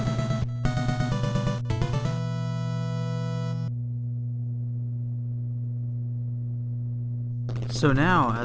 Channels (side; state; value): both; identical; correlation 1.00